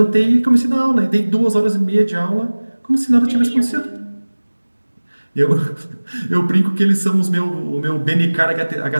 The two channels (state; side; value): inverted; both; correlation -1.00